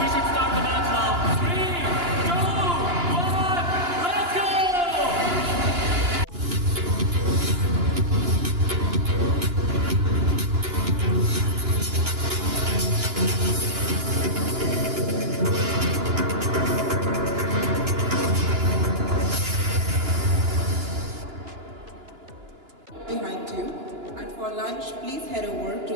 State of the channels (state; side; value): late; left; 2.9 ms